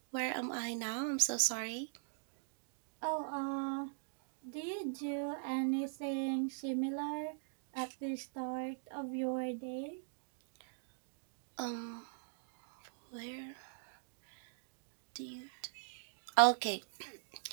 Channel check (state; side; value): silent; left; digital silence